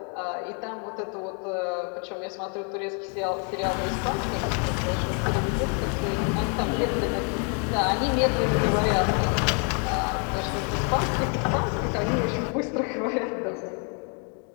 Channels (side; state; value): right; quieter; 39.3 dB